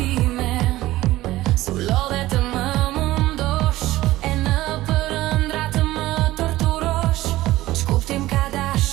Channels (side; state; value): left; quieter; 16.8 dB